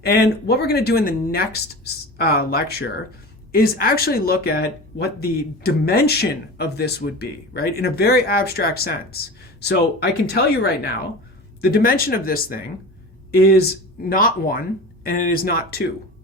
And what we're going to do in the next lecture is actually look at what the dimension of this would be, right? In a very abstract sense. So I can tell you right now, the dimension of this thing is not 1 and it is not 2.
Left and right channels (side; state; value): both; normal; correlation 0.33